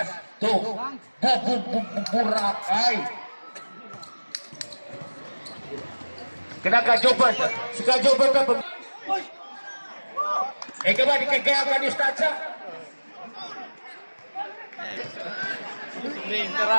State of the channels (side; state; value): both; inverted; correlation -1.00